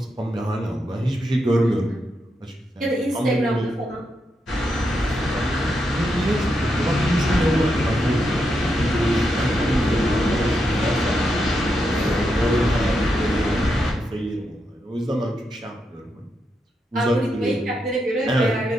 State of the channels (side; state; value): both; normal; correlation 0.83